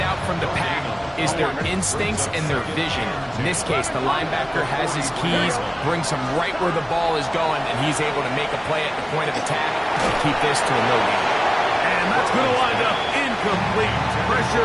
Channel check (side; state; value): both; identical; correlation 1.00